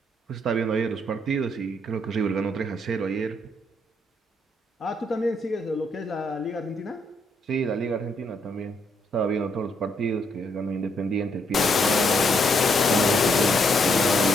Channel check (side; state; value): both; normal; correlation 0.74